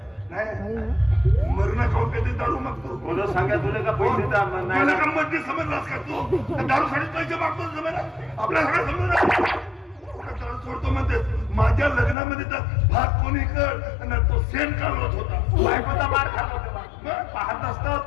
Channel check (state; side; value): drops out; right; at 12.2 s